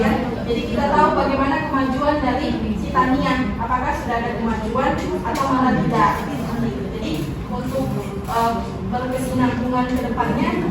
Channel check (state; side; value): identical; both; correlation 1.00